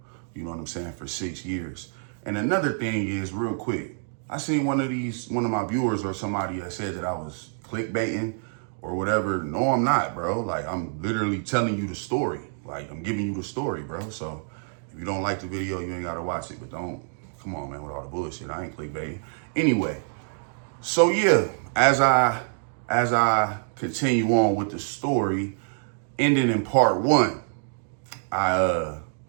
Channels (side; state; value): left; silent; digital silence